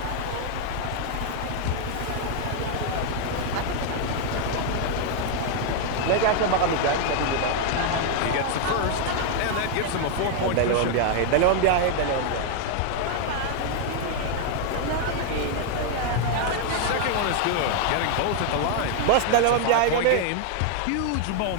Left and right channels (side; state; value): both; different; correlation 0.00